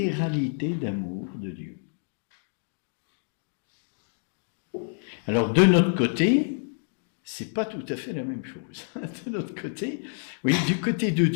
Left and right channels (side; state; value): right; silent; digital silence